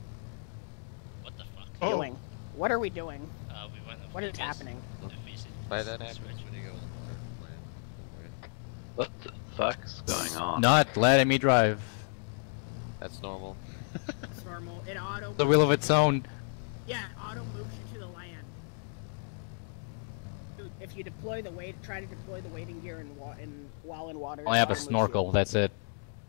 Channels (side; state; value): right; silent; digital silence